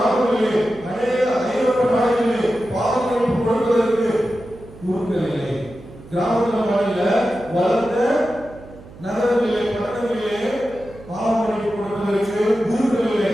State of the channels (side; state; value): right; noise; hum, 19 dB below the sound